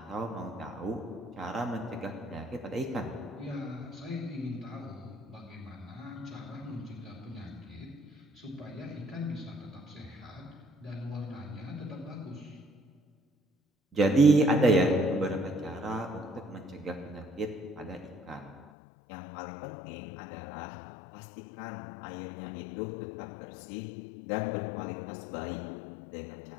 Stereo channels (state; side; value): drops out; right; at 18.7 s